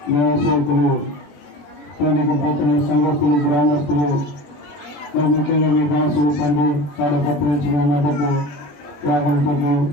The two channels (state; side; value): late; right; 21 ms